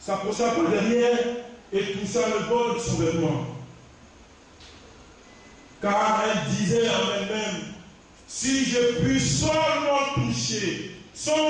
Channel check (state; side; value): identical; both; correlation 1.00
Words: par derrière et toucha le bord de son vêtement. Car elle disait en elle-même: Si je puis seulement toucher